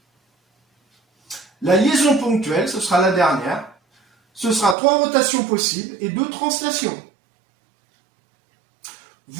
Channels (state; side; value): drops out; left; at 4.8 s